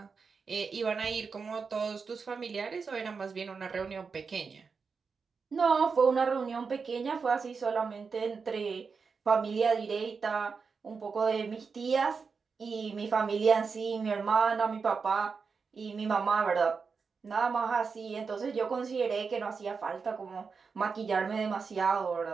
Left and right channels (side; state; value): left; quieter; 5.2 dB